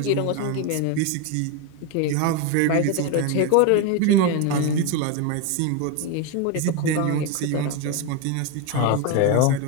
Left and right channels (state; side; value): different; both; correlation 0.02